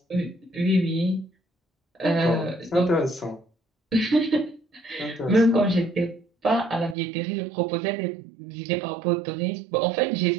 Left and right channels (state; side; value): drops out; left; at 7.0 s